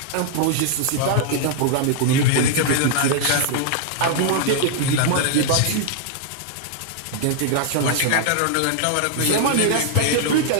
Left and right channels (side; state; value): both; different; correlation 0.00